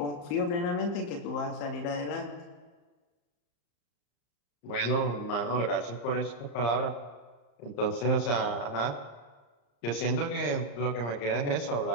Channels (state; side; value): late; right; 34 ms